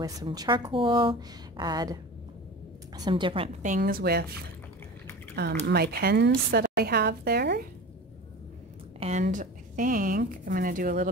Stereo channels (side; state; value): both; normal; correlation 0.34